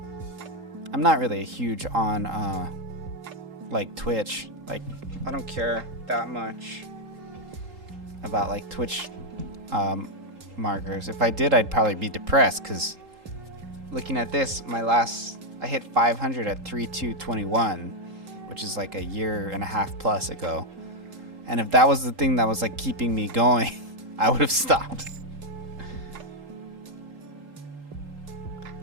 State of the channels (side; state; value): left; late; 3.8 ms